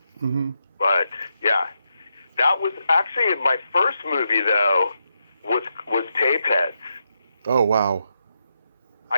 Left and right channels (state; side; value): inverted; both; correlation -0.84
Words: Mm-hmm. But yeah, that was actually my first movie though. Was Tapeheads. Oh wow.